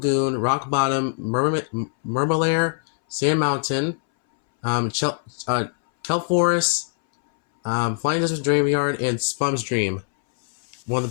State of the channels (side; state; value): right; silent; 62 dB below the other